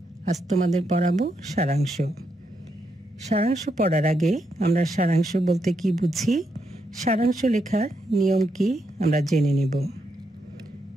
আজ তোমাদের পড়াবো সারাংশ। সারাংশ পড়ার আগে আমরা সারাংশ বলতে কি বুঝি, সারাংশ লেখার নিয়ম কি আমরা জেনে নেব।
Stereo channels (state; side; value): normal; both; correlation 0.81